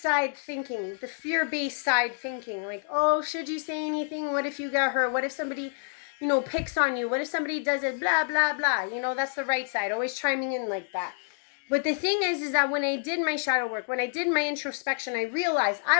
thinking, the fear-based side thinking. Like, oh, should you say anything? What if you got hurt? What if somebody, picks on you? What if somebody does it? Blah, blah, blah. That's the right side. Always chiming in like that. But the thing is that when I did my shadow work, when I did my introspection, I realized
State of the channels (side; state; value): right; silent; 59 dB below the other